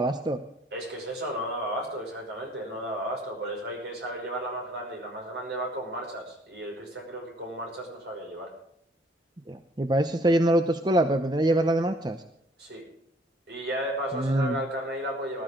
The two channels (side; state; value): both; normal; correlation 0.59